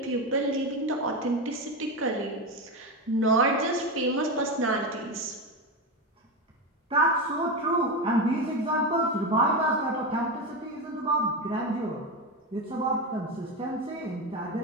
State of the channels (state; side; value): normal; both; correlation 0.16